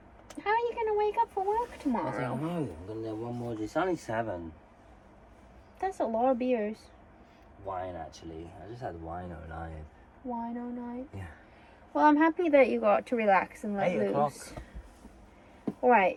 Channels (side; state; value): both; identical; correlation 1.00